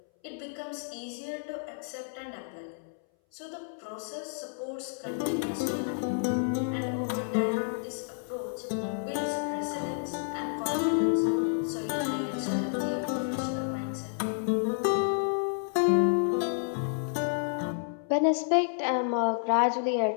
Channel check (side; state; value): right; silent; 58 dB below the other